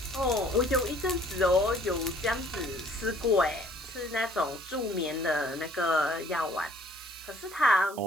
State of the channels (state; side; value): noise; right; hiss, 17 dB below the sound